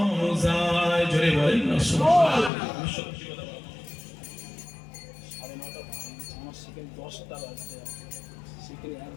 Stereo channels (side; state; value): right; drops out; at 2.5 s